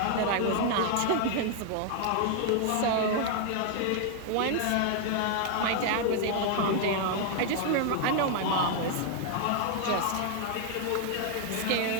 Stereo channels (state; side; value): different; both; correlation 0.00